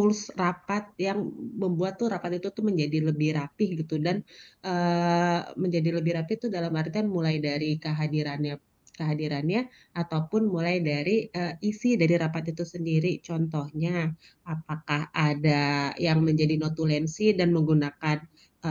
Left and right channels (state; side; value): identical; both; correlation 1.00